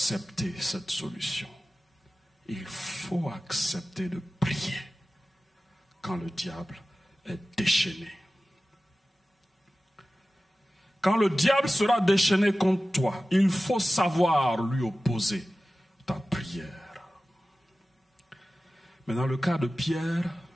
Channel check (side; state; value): both; normal; correlation 0.96